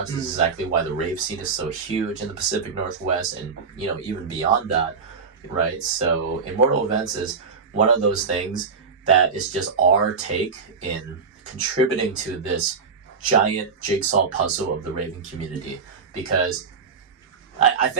This is exactly why the rave scene is so huge in the Pacific Northwest and, even beyond that, right? So Immortal Events is one of those things that is just our take in contributing to this giant jigsaw puzzle of the raving community. Because I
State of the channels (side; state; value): left; quieter; 5.3 dB